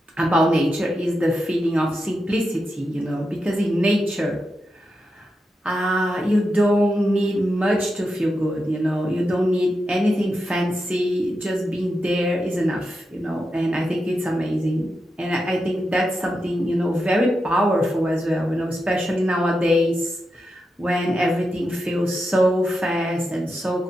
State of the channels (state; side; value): normal; both; correlation 0.87